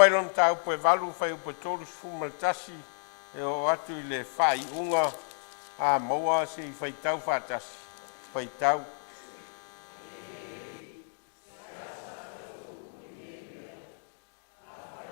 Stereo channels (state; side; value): silent; right; digital silence